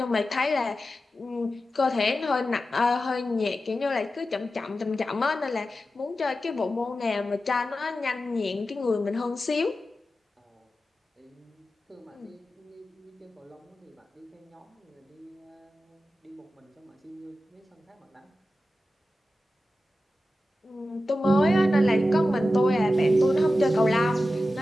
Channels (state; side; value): normal; both; correlation 0.93